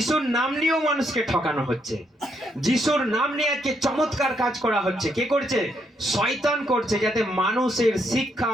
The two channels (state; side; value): normal; both; correlation 0.76